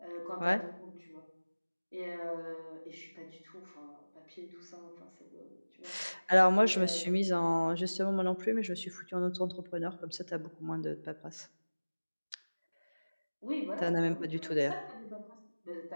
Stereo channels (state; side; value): inverted; both; correlation -1.00